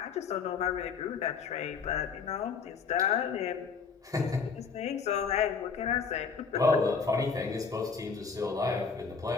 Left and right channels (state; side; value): quieter; right; 5.5 dB